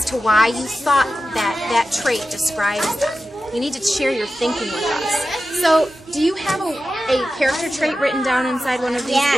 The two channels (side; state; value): both; normal; correlation 0.93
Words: to why you thought that that trait describes them. You need to share your thinking with us. So, do you have a character trait written down inside one of these